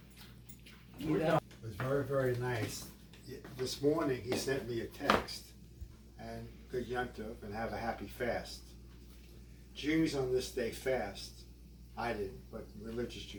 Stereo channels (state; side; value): identical; both; correlation 1.00